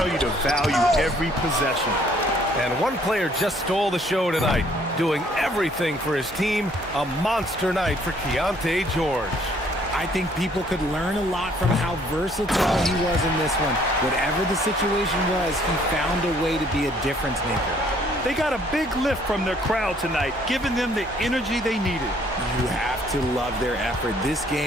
you to value every possession. And one player just stole the show tonight, doing everything for his team. A monster night for Keontae George. I think people could learn a lot from how versatile he was in this one. Whatever the situation was, he found a way to be a difference maker. They got a big lift from their crowd tonight, giving them the energy they needed. You have to love their effort. This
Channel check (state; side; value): normal; both; correlation 0.62